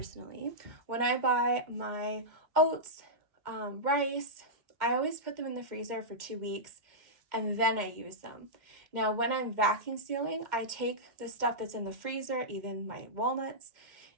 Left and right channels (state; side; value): late; left; 2.1 ms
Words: when I buy my oats, rice, I always put them in the freezer for 2 weeks and then I use them. Now, when I'm vacuum sealing, I take the stuff that's in the freezer, even my walnuts,